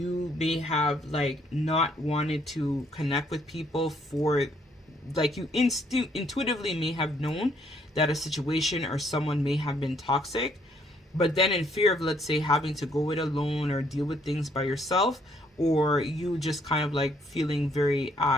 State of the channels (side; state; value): both; normal; correlation 0.68